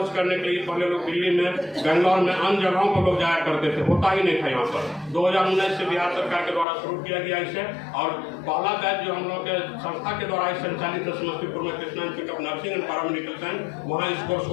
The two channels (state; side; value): drops out; right; at 6.7 s